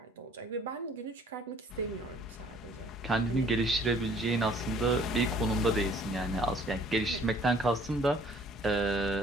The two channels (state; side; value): normal; both; correlation 0.56